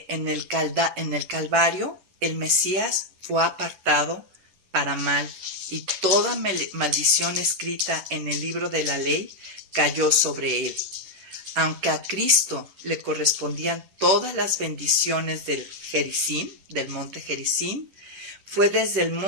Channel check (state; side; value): late; left; 11 ms